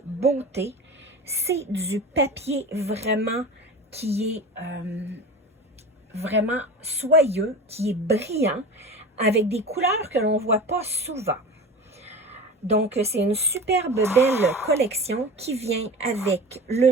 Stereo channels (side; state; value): both; normal; correlation 0.32